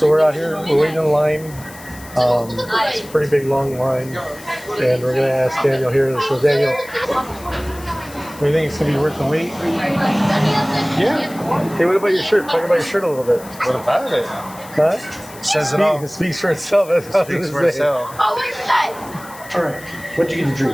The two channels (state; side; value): noise; left; hiss, 19 dB below the sound